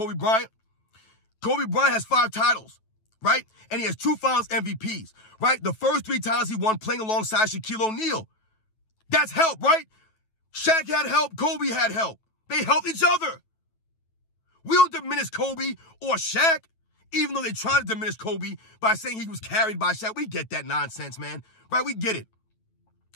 Bryant has 5 titles, right? And he has 2 Finals MVPs, right? The first 3 times he won playing alongside Shaquille O'Neal. That's help, right? Shaq had help. Kobe had help. They helped each other. We don't diminish Kobe or Shaq, even though they try to diminish Kobe by saying he was carried by Shaq. We get that nonsense, man, right? We get it.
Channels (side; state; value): right; late; 9.2 ms